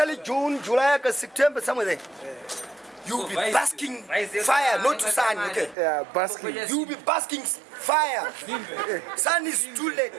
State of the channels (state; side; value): drops out; left; at 5.8 s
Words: June, July, August, September, somewhere there. You'll be basking fire, not sun, okay? Yeah, basking. You'll be basking fire. Sun is too late.